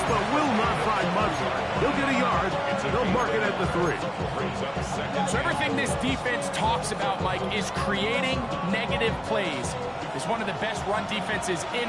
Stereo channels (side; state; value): both; identical; correlation 1.00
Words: but will not find much. He'll get a yard. They'll mark it at the 3. So everything this defense talks about, Mike, is creating negative plays. It's one of the best run defenses